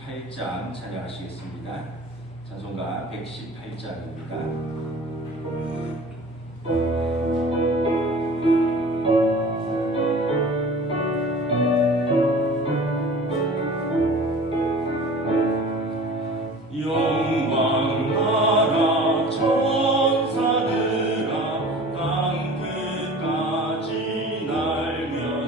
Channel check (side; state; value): both; normal; correlation 0.42